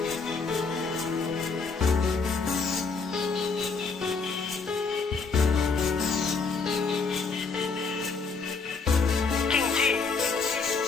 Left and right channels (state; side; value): quieter; right; 4.8 dB